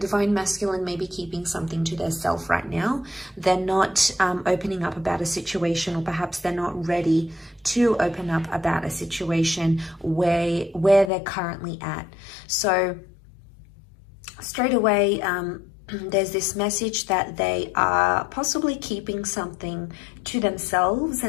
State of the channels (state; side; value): drops out; right; at 11.1 s